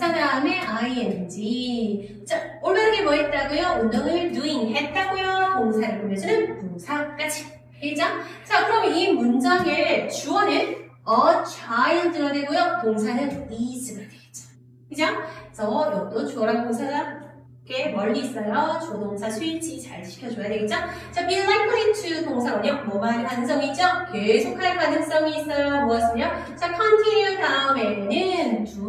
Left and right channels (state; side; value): identical; both; correlation 1.00